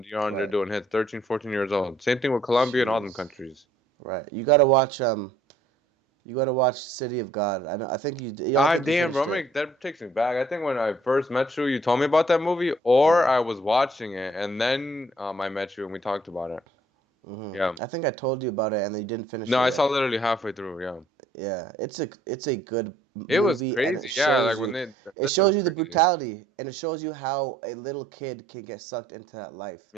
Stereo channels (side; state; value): both; normal; correlation 0.62